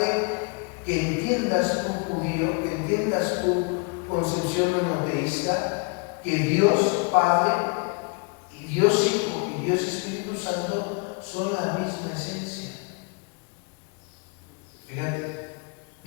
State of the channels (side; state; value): right; quieter; 33.5 dB